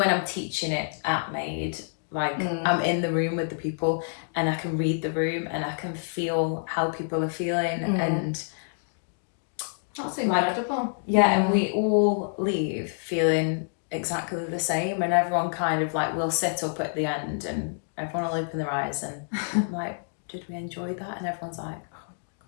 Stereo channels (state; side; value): silent; right; digital silence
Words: I'm teaching it at Made, like I'm in the room with the people and I can read the room and I can feel how people are feeling, and that's incredible. And we all leave feeling exactly the same, and everyone kind of like will sit up at the end and everyone will open their eyes and I'm like, did we enjoy that? And everyone's like, oh